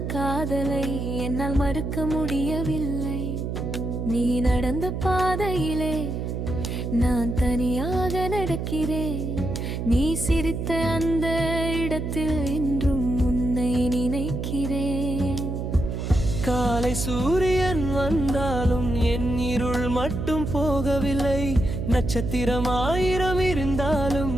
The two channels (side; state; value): right; noise; hum, 3 dB below the sound